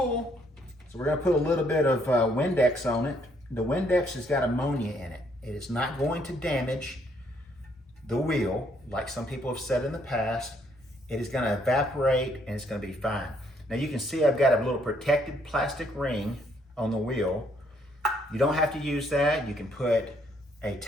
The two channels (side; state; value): both; normal; correlation 0.69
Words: so we're gonna put a little bit of Windex on it. The Windex has got ammonia in it. It is not going to damage the wheel, like some people have said in the past. It is gonna evaporate and it's gonna be fine. Now you can see I've got a little protected plastic ring on the wheel. You don't have to use that. You can put a